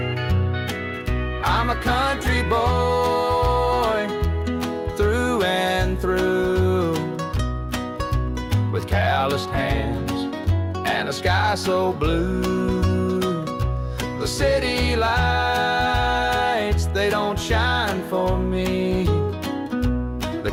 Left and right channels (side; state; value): both; identical; correlation 1.00